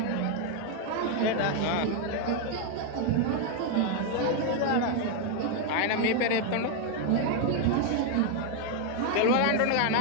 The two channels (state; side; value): different; both; correlation 0.01